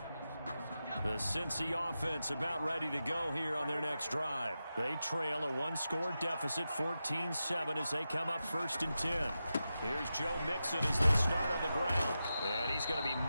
The Cincy offense about ready to go here on their next drive. They trail a 1-score deficit, 14-7, as they come up 1st and 10. Here's Joe Mixon as they start on the ground. And he's going to be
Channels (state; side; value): inverted; both; correlation -0.91